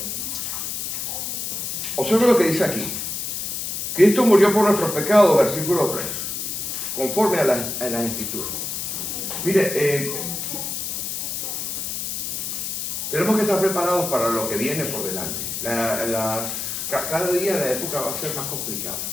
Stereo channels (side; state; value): left; noise; hiss, 3 dB below the sound